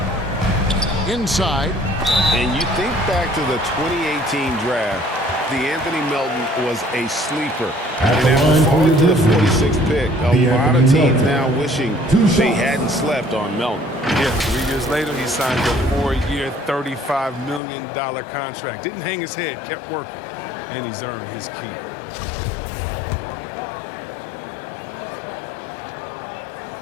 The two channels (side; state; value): right; drops out; at 17.6 s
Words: Inside. And you think back to the 2018 draft, Anthony Melton was a sleeper. And after falling to the 46th pick, a lot of teams now wishing they hadn't slept on Melton. Yeah, 3 years later, he signed a 4-year, $35 million contract. Didn't hang his head, kept working, and he's earned his keep.